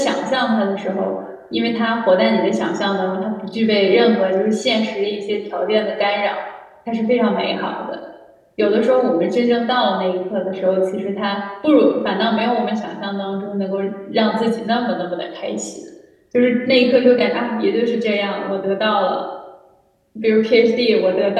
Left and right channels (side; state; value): both; identical; correlation 1.00